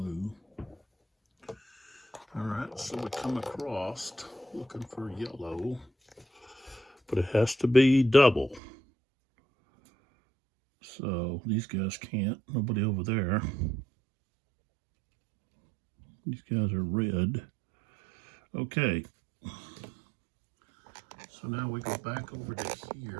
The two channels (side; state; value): left; drops out; at 8.6 s